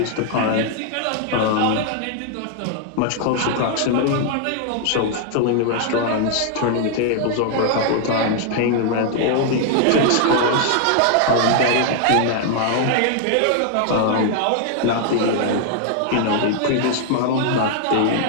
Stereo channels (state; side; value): different; both; correlation 0.00